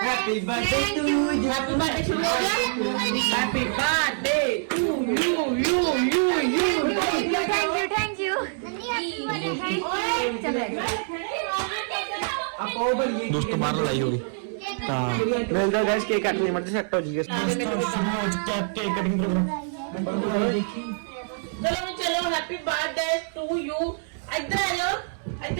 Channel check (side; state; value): left; silent; 61 dB below the other